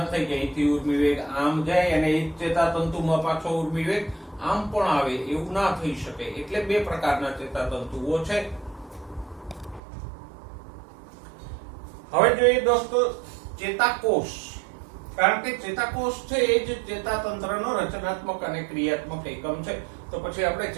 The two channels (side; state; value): left; drops out; at 9.8 s